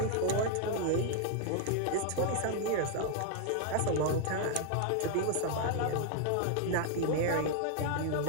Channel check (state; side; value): different; both; correlation 0.00